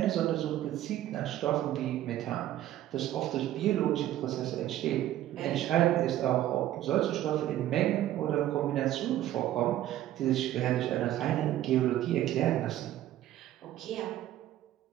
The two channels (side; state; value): left; quieter; 13.2 dB